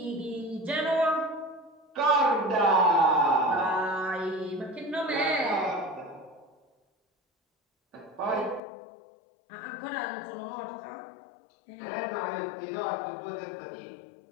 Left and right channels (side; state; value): right; drops out; at 8.6 s